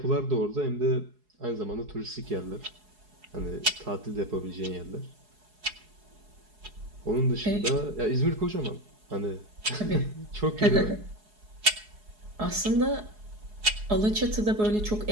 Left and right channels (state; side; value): late; left; 4.7 ms